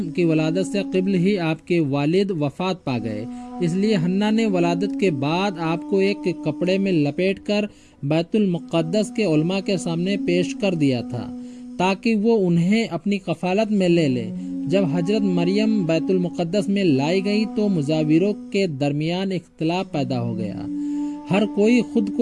की वलादत से क़िब्ल ही आपके वालिद वफ़ात पा गए, इसलिए हन्ना ने वलादत के बाद आपको एक कपड़े में लपेट कर बैतुल मुक़द्दस के उलमा के सामने पेश कर दिया था ताकि वो उन्हें अपनी कफ़ालत में ले ले। जब हजरत मरियम बैतुल मुक़द्दस में लाई गई तो मुजाविरों के दरमियान इख्तिलाफ पैदा हो गया। हर कोई खुद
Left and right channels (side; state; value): both; identical; correlation 1.00